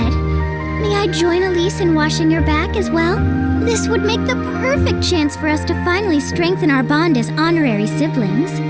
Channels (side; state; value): both; identical; correlation 1.00